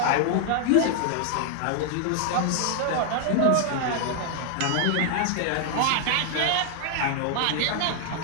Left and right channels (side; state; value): both; different; correlation 0.00